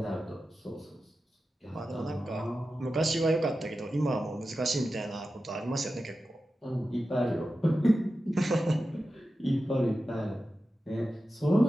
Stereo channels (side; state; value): both; normal; correlation 0.93